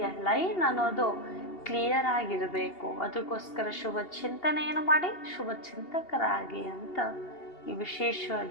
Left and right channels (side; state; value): right; late; 2.8 ms